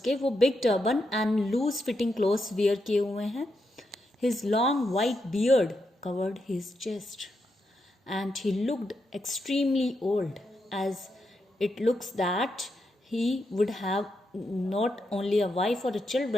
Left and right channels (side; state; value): both; normal; correlation 0.83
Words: वो big turban and loose fitting clothes wear किए हुए हैं. His long white beard covered his chest and he looked extremely old, as it looks that he would have not only a wife or a